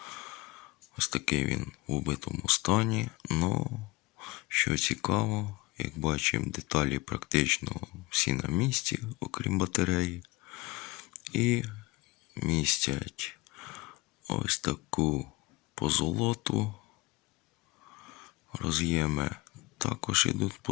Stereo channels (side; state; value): right; quieter; 22.1 dB